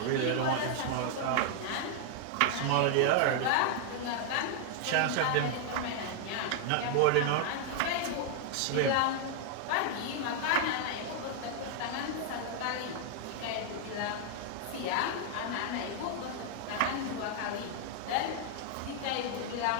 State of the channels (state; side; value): different; both; correlation 0.00